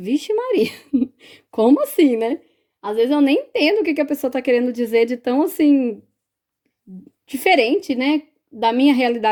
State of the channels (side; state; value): both; identical; correlation 1.00